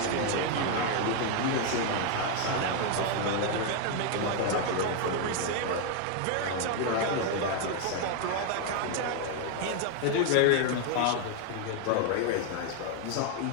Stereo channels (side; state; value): both; different; correlation 0.01